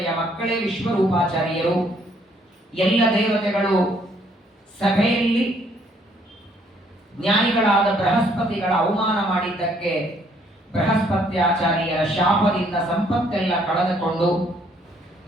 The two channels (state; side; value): normal; both; correlation 0.66